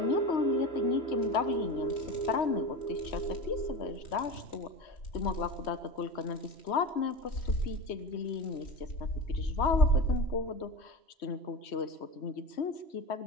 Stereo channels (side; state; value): right; late; 3.1 ms